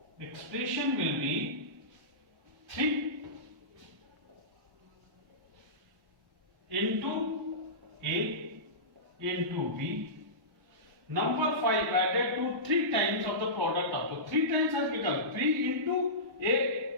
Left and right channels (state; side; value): normal; both; correlation -0.20